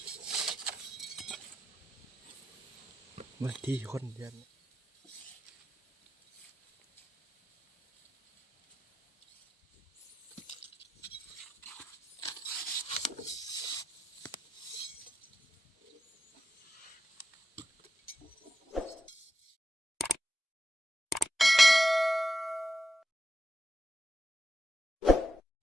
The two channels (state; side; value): normal; both; correlation 0.87